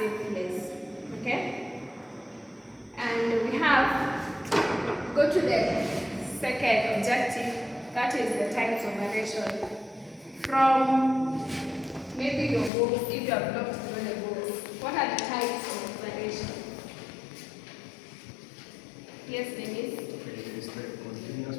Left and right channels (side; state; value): right; drops out; at 12.7 s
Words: place. Okay? And we have, go to the second objective, that is the types of variation. From maybe your books, if you have looked through the books, what are the types of variation? Yes, Denise? Okay, is the continuous